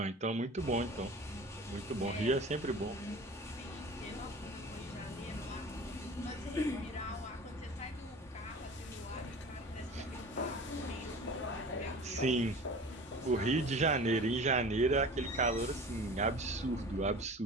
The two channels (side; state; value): both; normal; correlation 0.39